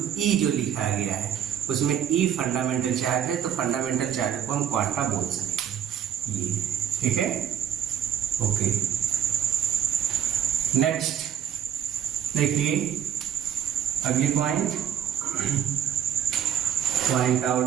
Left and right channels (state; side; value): quieter; left; 9.1 dB